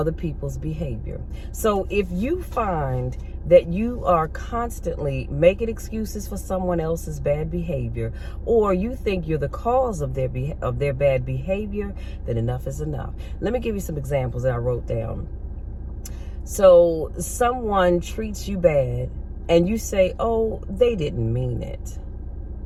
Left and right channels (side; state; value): both; identical; correlation 1.00